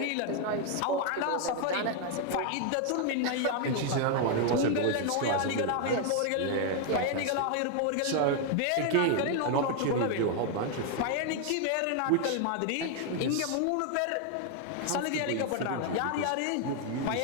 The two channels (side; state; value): both; different; correlation 0.00